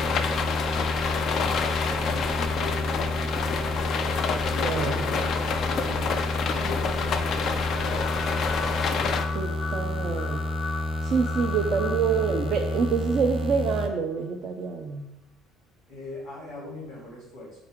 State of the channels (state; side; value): normal; both; correlation 0.66